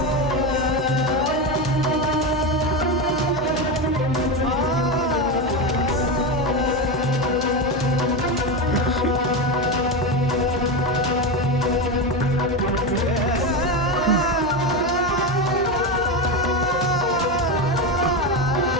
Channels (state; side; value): noise; left; hum, 14 dB below the sound